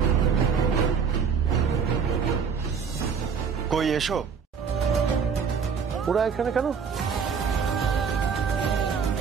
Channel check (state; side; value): quieter; left; 6.3 dB